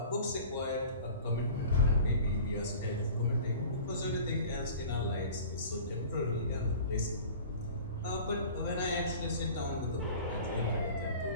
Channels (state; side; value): inverted; both; correlation -0.42